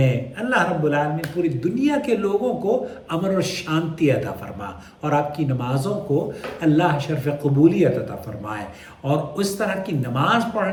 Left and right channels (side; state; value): both; identical; correlation 1.00